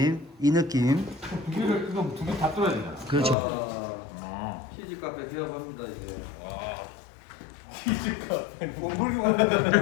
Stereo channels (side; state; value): right; drops out; at 3.4 s